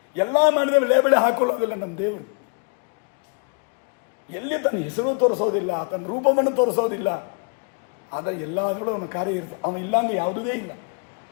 ಎಲ್ಲ ಮಾಡಿದ ಲೇಬಲೇ ಹಾಕೊಳ್ಳೋದಿಲ್ಲ ನಮ್ಮ ದೇವರು. ಎಲ್ಲಿ ತನ್ನ ಹೆಸರು ತೋರಿಸೋದಿಲ್ಲ, ತನ್ನ ರೂಪವನ್ನು ತೋರಿಸೋದಿಲ್ಲ. ಆದರೆ ಎಲ್ಲಾದರೂ ಅವನ ಕಾರ್ಯ ಇರ್ತದೆ. ಅವನು ಇಲ್ಲಾಂದ್ರೆ ಯಾವುದೇ ಇಲ್ಲ.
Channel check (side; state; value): right; quieter; 35.3 dB